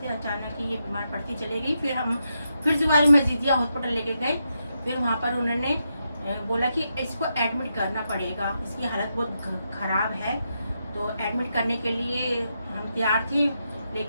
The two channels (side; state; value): both; inverted; correlation -0.84